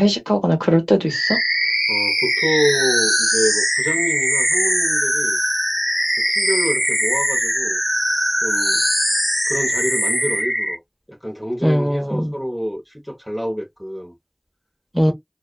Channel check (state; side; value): identical; both; correlation 1.00